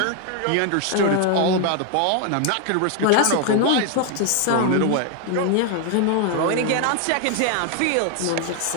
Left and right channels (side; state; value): both; different; correlation 0.00